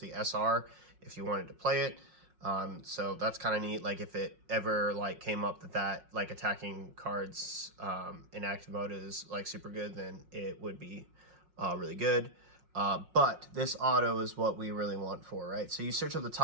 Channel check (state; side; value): late; left; 5.5 ms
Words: SR if you wanted to play it. So that's kind of neat. Like if it ever like came up that like attacking cards in active mode is like super good, then it would be really good. But this auto is what we really want for, right? So you search up the